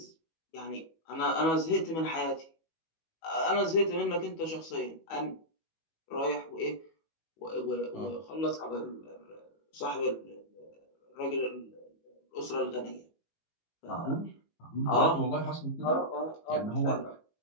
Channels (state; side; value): late; right; 18 ms